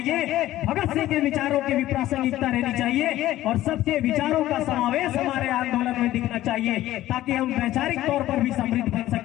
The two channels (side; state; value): right; quieter; 14.7 dB